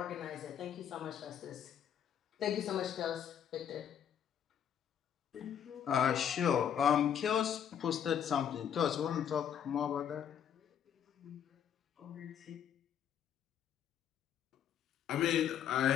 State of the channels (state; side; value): quieter; right; 9.0 dB